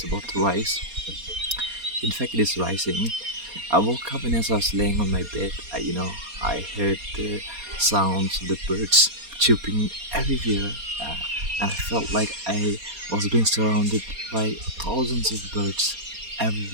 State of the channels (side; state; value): left; late; 4.2 ms